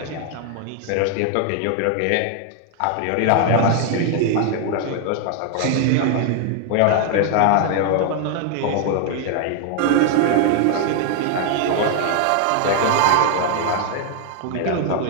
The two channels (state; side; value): different; both; correlation 0.00